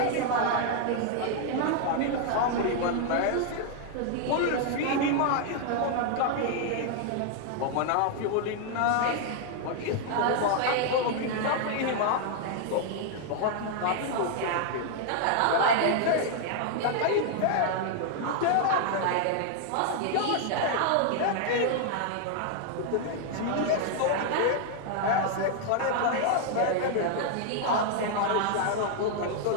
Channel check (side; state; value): both; different; correlation 0.00